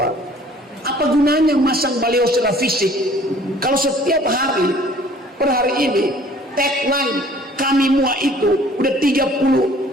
apa gunanya masang baliho secara fisik kalau setiap hari per hari ini tagline kami mua itu udah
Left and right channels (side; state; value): both; normal; correlation 0.53